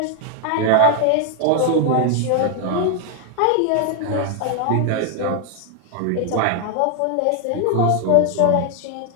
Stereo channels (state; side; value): different; both; correlation 0.00